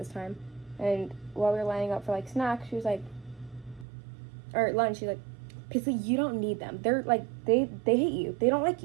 time. And while we were lining up for, like, snacks, she was like, or lunch, she's like, Paisley, you don't need them. They're, like, they hate you. They don't like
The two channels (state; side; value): drops out; left; at 3.9 s